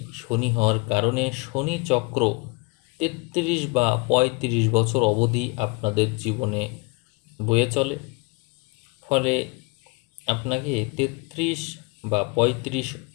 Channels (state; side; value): quieter; right; 29.4 dB